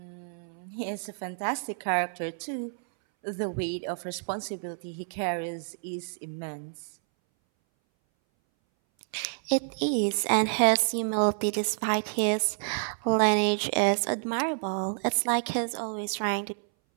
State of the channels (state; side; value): silent; left; 59 dB below the other